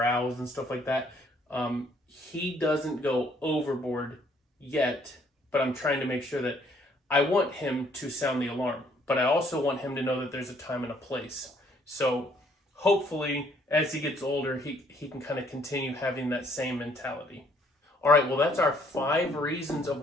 and stuff like that. He doesn't go overboard yet, but I'm trying to make sure that I want him to sound the alarm, but I also want him to know that there's a time and a place. So hopefully, as he gets older, he can kind of continue having that same mentality. All right, well, that's our 5 reasons of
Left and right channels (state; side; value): normal; both; correlation 0.64